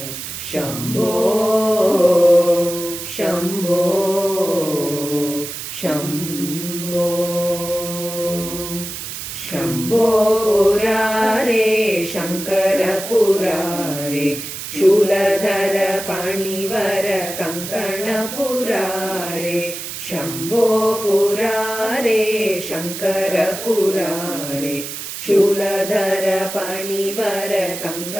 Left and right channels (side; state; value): right; noise; hiss, 8 dB below the sound